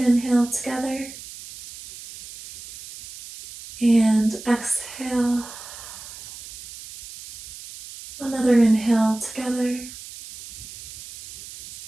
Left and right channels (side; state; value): right; noise; hiss, 15 dB below the sound